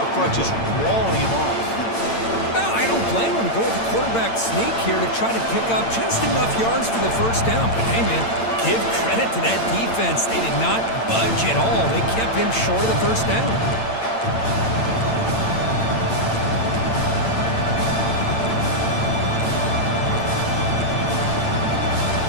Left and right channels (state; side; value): late; right; 8.9 ms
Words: front just walling him off. No, I don't blame him. Go with the quarterback sneak here to try to pick up just enough yards for the first down. But hey, man, give credit to to that defense. They did not budge at all. They kept him short of the first down.